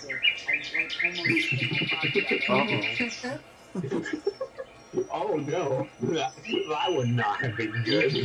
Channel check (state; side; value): identical; both; correlation 1.00